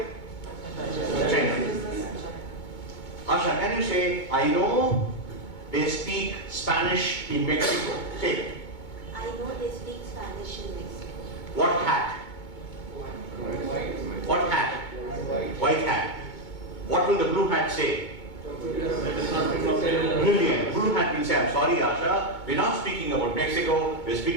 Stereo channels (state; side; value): late; right; 2.2 ms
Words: China. Asha, can you say, I know they speak Spanish in Mexico? Say it. I know they speak Spanish in Mexico. What hat? What hat? White hat. What will the blue hat say? Brilliant. Blue hat will say, I'm sorry, Asha, we're not speaking about Mexico, we're